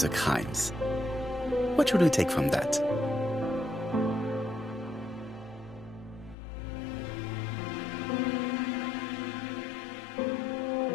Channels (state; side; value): drops out; right; at 6.4 s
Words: crimes. What should we take from that?